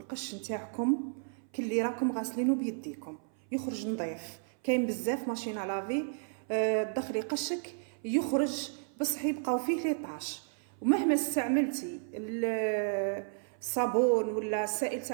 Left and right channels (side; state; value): left; silent; 56 dB below the other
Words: نتاعكم كلي راكم غاسلينه بيديكم يخرج نظيف. كاين بزاف ماشينه لافي تدخلي قشك يخرج بصح يبقاو فيه لي طاش، ومهما استعملتي الصابون ولا السائل